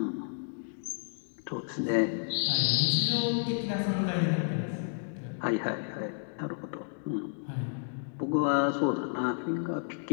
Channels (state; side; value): silent; right; digital silence